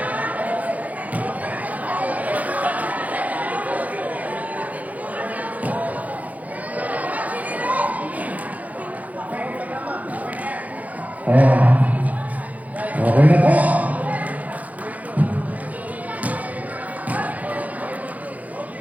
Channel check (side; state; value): left; late; 0.076 ms